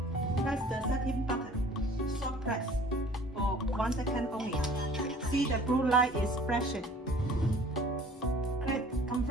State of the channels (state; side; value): normal; both; correlation 0.50